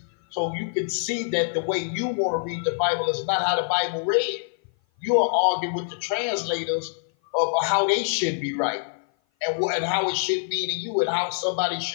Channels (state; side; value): silent; right; 56 dB below the other